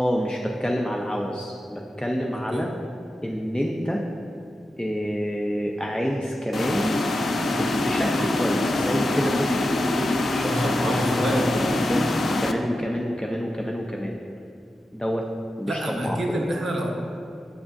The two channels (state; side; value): normal; both; correlation 0.90